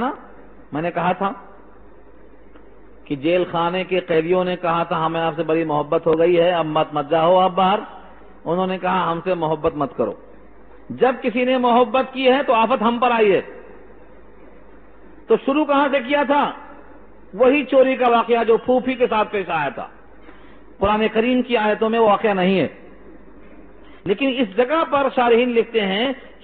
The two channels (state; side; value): identical; both; correlation 1.00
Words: میں نے کہا تھا کہ جیل خانے کے قیدیوں نے کہا تھا ہمیں آپ سے بڑی محبت ہو گئی ہے، اب مت جاؤ آپ باہر۔ انہوں نے کہا ہم سے محبت مت کرو۔ جب کسی نے محبت کی ہے تو آفت ہم پر آئی ہے۔ تو شروع کہاں سے کیا تھا؟ وہی چوری کا واقعہ جو پھوپھی کے ساتھ پیش آیا تھا۔ قرآن کریم کی آیتوں میں وہ واقعہ نہیں ہے، لیکن اس جگہ پر شارحین لکھتے ہیں